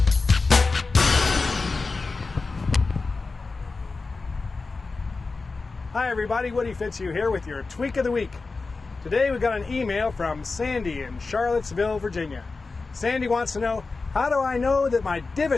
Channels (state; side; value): quieter; right; 4.0 dB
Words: Hi everybody, Woody Fitzhugh here with your Tweak of the Week. Today we got an email from Sandy in Charlottesville, Virginia. Sandy wants to know, how do I know that my